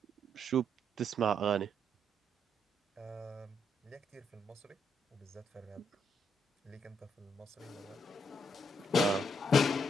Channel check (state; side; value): normal; both; correlation 0.74